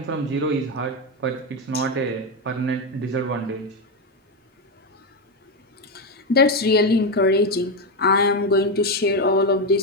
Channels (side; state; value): both; normal; correlation 0.09